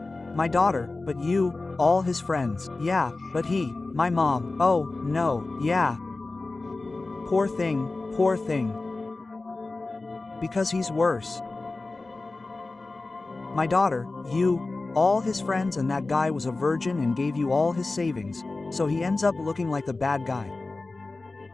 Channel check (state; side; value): quieter; right; 3.4 dB